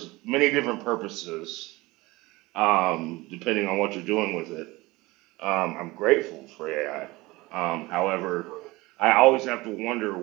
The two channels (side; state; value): left; quieter; 21.3 dB